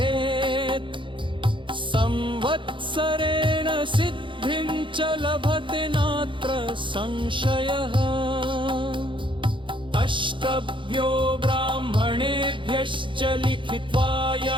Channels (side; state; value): left; late; 0.24 ms